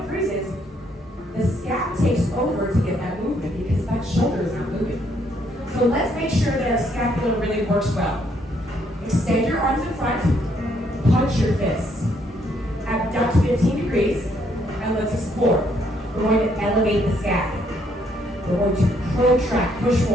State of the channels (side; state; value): both; normal; correlation 0.70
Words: freezes, the scap takes over to get that movement because that shoulder is not moving. So let's make sure that our scapula really works well. Extend your arms in front, punch your fists. Abduct 15 degrees, and let's explore. We're going to elevate the scap. We're going to protract, push